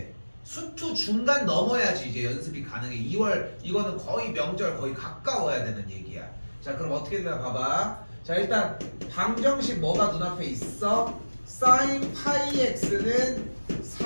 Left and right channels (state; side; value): inverted; both; correlation -1.00